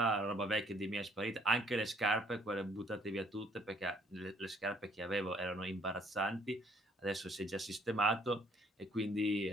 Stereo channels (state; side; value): normal; both; correlation 0.63